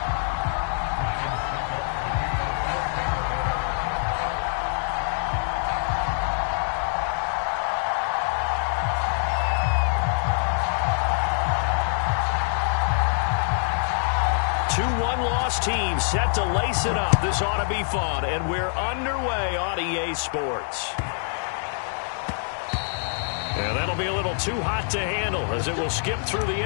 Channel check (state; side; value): silent; right; digital silence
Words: 2-1 team set to lace it up. This ought to be fun, and we're underway on EA Sports. And that'll be a little too hot to handle as it will skip through the